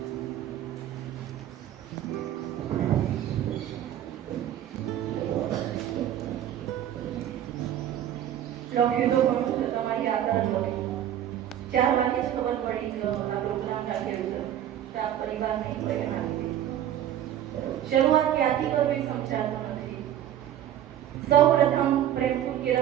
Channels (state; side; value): quieter; left; 11.3 dB